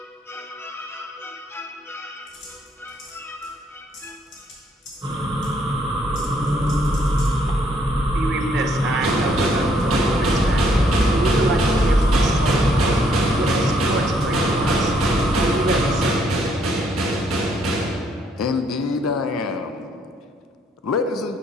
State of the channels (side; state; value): both; normal; correlation 0.69